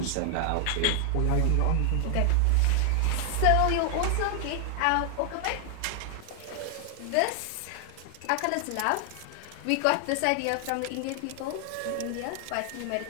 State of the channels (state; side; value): different; both; correlation 0.00